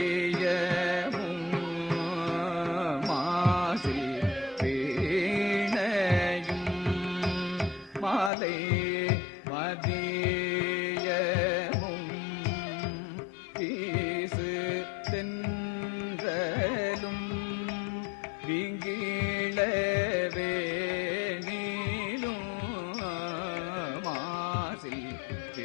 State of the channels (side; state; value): right; drops out; at 8.3 s